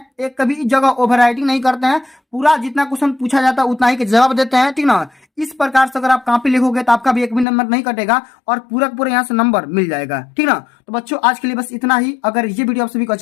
एक कभी जगह ओवर राइटिंग नहीं करते हैं, पूरा जितना क्वेश्चन पूछा जाता है उतना ही के जवाब देते हैं, ठीक ना। इस प्रकार से अगर आप कॉपी लिखोगे तो आपका भी एक भी नंबर नहीं कटेगा और पूरा यहाँ से नंबर मिल जाएगा, ठीक ना। तो बच्चों आज के लिए बस इतना ही। अगर ये वीडियो आप सभी को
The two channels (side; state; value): right; drops out; at 7.5 s